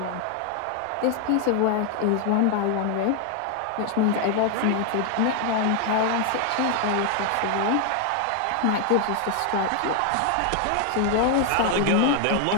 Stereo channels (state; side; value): different; both; correlation 0.00